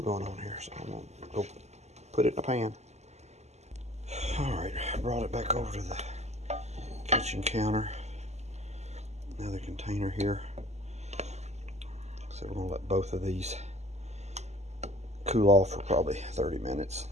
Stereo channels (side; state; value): left; late; 0.33 ms